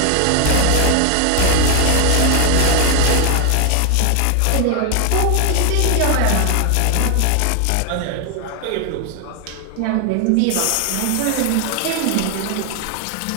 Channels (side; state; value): both; different; correlation 0.01